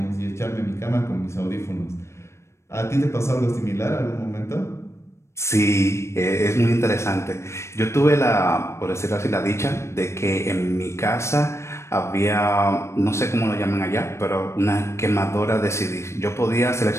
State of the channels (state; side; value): late; right; 0.13 ms